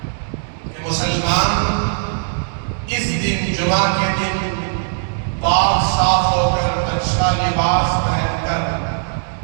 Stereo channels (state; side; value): silent; left; digital silence